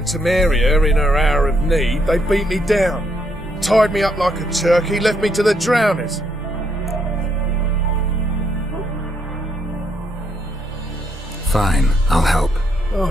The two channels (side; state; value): both; normal; correlation 0.75